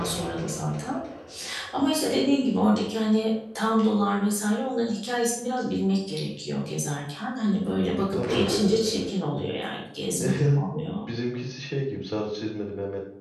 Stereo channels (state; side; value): identical; both; correlation 1.00